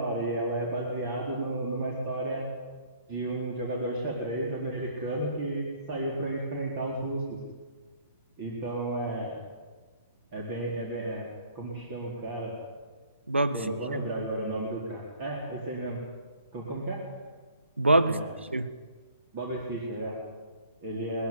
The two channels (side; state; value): both; inverted; correlation -0.58